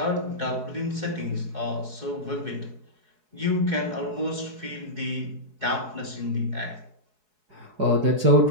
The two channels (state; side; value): late; left; 4.7 ms